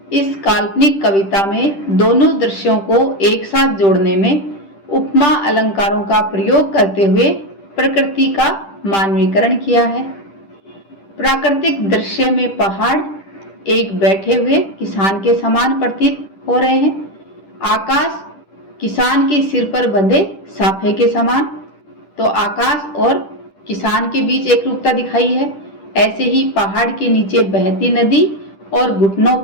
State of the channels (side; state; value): right; late; 10 ms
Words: इस काल्पनिक कविता में दोनों दृश्यों को एक साथ जोड़ने में उपमा अलंकारों का प्रयोग करते हुए प्रकृति का मानवीकरण किया है। प्राकृतिक दृश्य में पहाड़ एक बैठे हुए किसान के समान प्रतीत हो रहे हैं। आकाश किसान के सिर पर बंधे साफे के समान, तो आकाश और किसान के बीच एक रूपता दिखाई है। ऐसे ही पहाड़ के नीचे बहती नदी और घुटनों